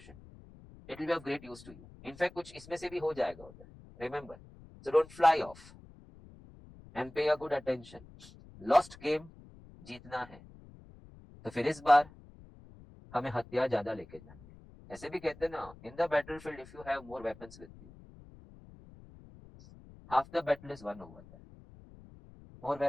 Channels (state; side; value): noise; left; rumble, 20 dB below the sound